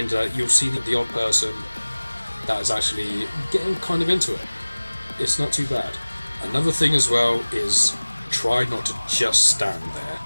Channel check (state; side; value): inverted; both; correlation -1.00